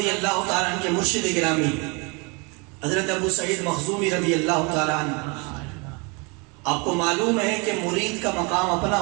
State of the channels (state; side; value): quieter; left; 30.6 dB